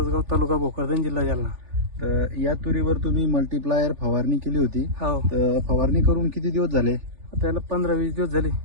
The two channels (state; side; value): late; left; 3.4 ms